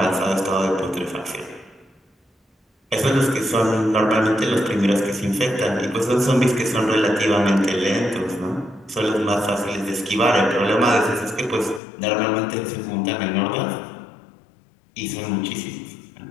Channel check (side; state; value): right; drops out; at 11.8 s